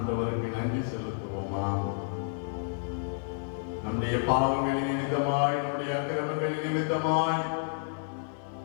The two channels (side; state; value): right; silent; 58 dB below the other